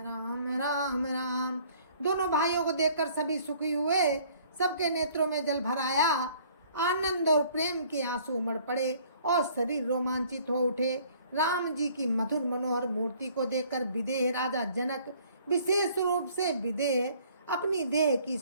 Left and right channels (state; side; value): inverted; both; correlation -0.57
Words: राम राम। दोनों भाइयों को देखकर सभी सुखी हुए। सबके नेत्रों में जल भर आया। आनंद और प्रेम के आंसू उमड़ पड़े और शरीर रोमांचित हो उठे। राम जी की मधुर मनोहर मूर्ति को देखकर विदेह राजा जनक विशेष रूप से विदेह अपनी देह की